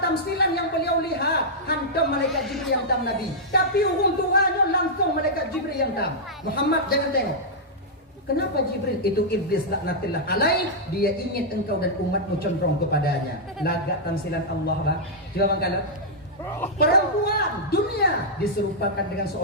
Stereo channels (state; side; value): normal; both; correlation -0.08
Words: yang beliau lihat, hantam malaikat Jibril yang tam Nabi. Tapi urung tuanya langsung malaikat Jibril yang tam. Muhammad jangan tengok. Kenapa Jibril? Itu iblis laknatillah alaih. Dia ingin engkau dan umatmu condong kepadanya. Lagak tamsilan Allah lah. Coba bangkalan. Perempuan dunia diserupakan dengan